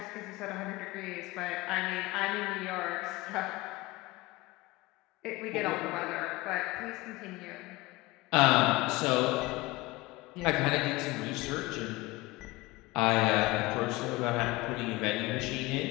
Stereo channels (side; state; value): right; quieter; 20.8 dB